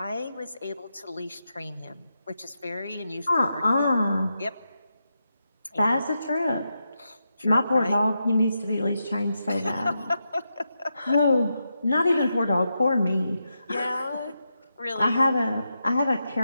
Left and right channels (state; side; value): inverted; both; correlation -0.86